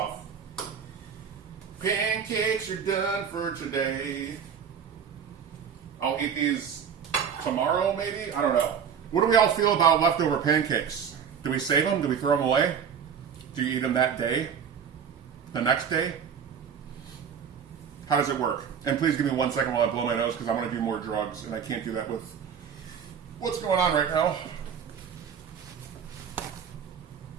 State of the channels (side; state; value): left; quieter; 7.4 dB